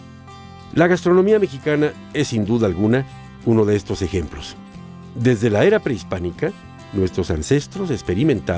La gastronomía mexicana es sin duda alguna uno de estos ejemplos. Desde la era prehispánica, nuestros ancestros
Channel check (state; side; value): identical; both; correlation 1.00